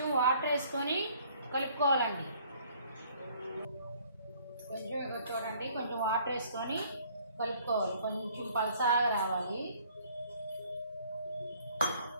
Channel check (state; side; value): inverted; both; correlation -0.59